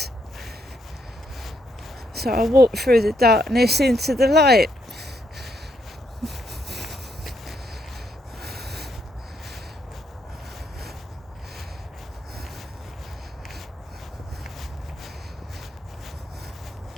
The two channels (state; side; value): normal; both; correlation 0.75